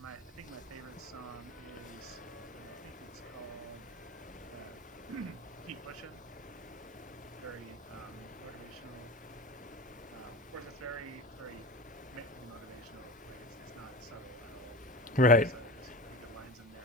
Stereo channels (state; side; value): normal; both; correlation 0.31